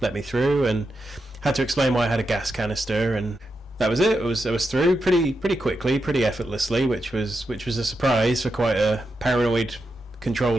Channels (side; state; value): both; normal; correlation 0.87